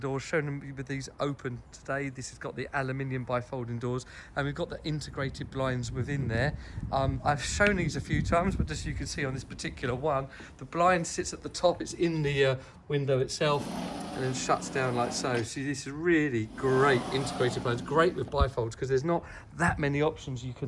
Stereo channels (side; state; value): both; identical; correlation 1.00